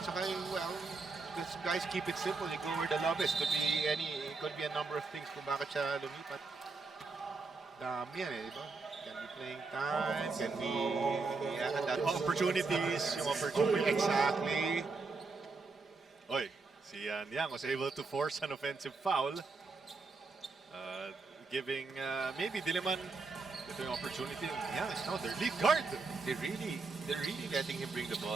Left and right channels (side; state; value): left; quieter; 4.1 dB